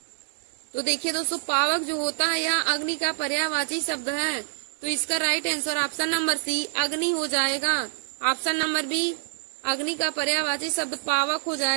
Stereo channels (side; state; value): left; silent; 61 dB below the other